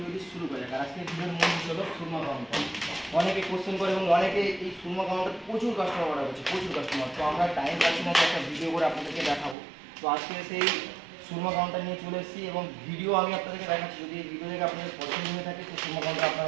ভিডিও শুরু করা যাক। আর আজকে ভিডিওর মূল বিষয় হলো সুরমা কাউন্টার। অনেকে কোশ্চেন করে এবং অনেকে এই সুরমা কাউন্টার প্রচুর কাস্টমার অর্ডার করছে, প্রচুর কাস্টমার। তো আমরা টাইম পাচ্ছি না যে একটা ভিডিও করে আপনাদেরকে দেখাবো। তো আজকে সেই সুরমা কাউন্টার নিয়ে চলে এসেছি এবং ভিডিও আমি আপনাদেরকে দেখাচ্ছি। যদি এই ভিডিও দেখে আপনাদের পছন্দ হয়ে থাকে তো সুরমা কাউন্টার আপনারা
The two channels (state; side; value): drops out; left; at 9.6 s